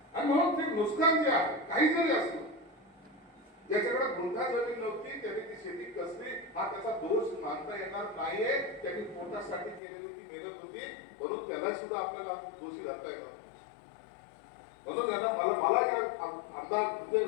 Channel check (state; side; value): drops out; right; at 9.8 s